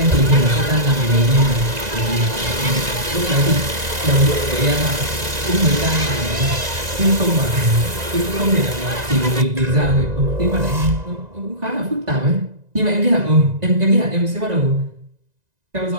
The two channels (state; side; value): late; left; 1.9 ms